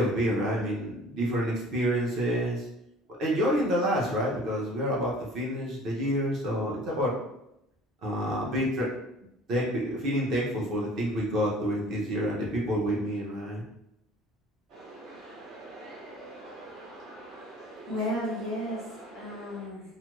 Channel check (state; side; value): normal; both; correlation 0.49